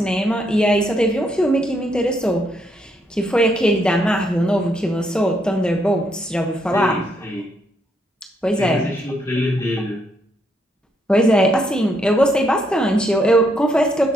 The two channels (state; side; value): normal; both; correlation 0.75